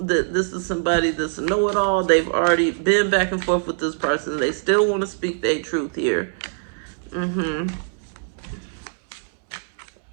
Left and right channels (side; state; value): left; silent; digital silence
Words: that this is somebody that's a know-it-all. They've already been back and forth with this person. They still want to speak their truth here.